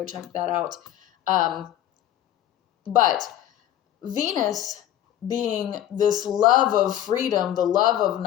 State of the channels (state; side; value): quieter; right; 11.9 dB